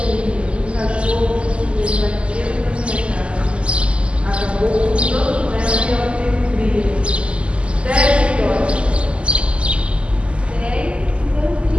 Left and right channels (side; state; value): left; late; 0.055 ms